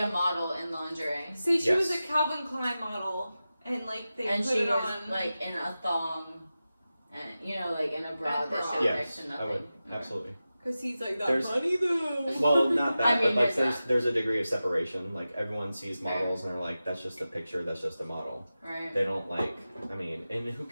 model in lingerie. Say she was a Yes. Calvin Klein model, and like they And put she it was on like in a thong, and you know, like in a bra A that bra. showed Yes, next to I nothing. would. Okay. Absolutely. because he's like that There's- money though. Well, not that, I mean, but like there's there's a degree of separation. Like everyone sees Fair. models and they're like, that's just a picture, that's just a model. Right. They don't like, I mean, and who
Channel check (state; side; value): inverted; both; correlation -0.94